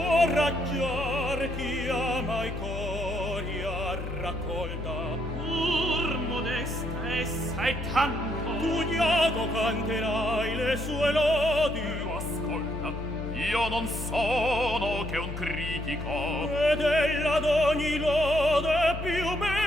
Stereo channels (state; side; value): noise; left; hum, 6 dB below the sound